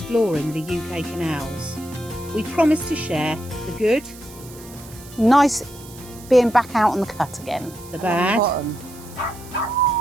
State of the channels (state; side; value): noise; right; hiss, 19 dB below the sound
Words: the UK canals. We promise to share the good, nice being back out on the cut again. the bad,